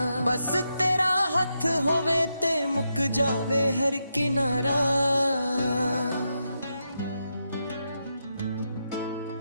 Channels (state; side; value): inverted; both; correlation -0.85